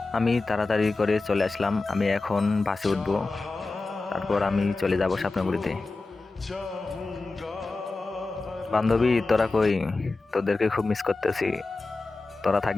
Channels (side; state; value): right; quieter; 3.5 dB